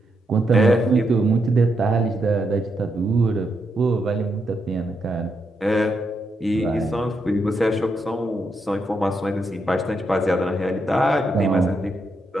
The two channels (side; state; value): both; normal; correlation 0.81